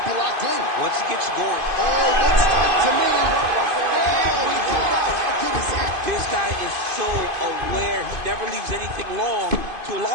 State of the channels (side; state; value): left; late; 2.5 ms